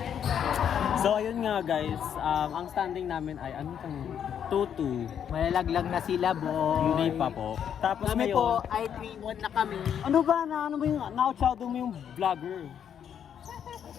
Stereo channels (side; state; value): right; quieter; 8.7 dB